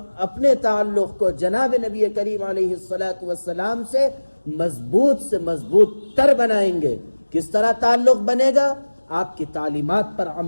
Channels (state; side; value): inverted; both; correlation -1.00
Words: اپنے تعلق کو جناب نبی کریم علیہ الصلاۃ والسلام سے مضبوط تر بنائیں گے۔ کس طرح تعلق بنے گا؟ آپ کی تعلیمات پر